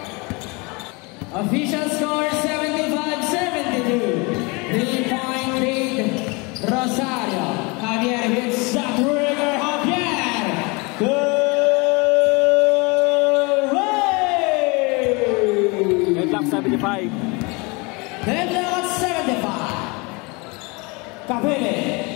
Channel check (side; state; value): right; quieter; 28.1 dB